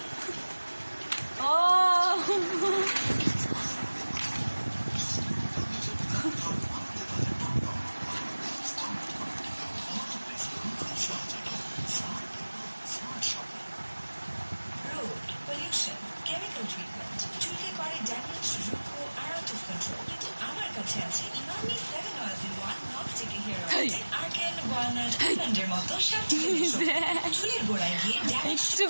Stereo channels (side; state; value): both; inverted; correlation -1.00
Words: ও pollution, chemical treatment, চুলকে করে damage, রুক্ষ আর আউট অফ কন্ট্রোল। কিন্তু আমার কাছে আছে Emami 7 Oils in 1 non-sticky hair oil, argan, walnut, আলমন্ডের মতো 7টি চুলের গোড়ায় গিয়ে ড্যামেজ